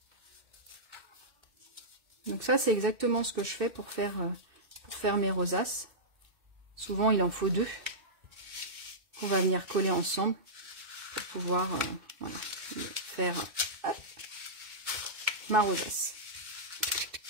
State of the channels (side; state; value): left; late; 2.6 ms